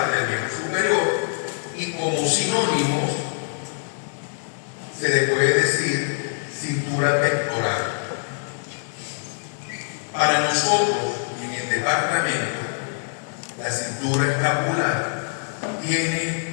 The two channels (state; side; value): silent; right; digital silence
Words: del miembro superior y como sinónimos se le puede decir cintura pectoral. Para nosotros, en el departamento, la cintura escapular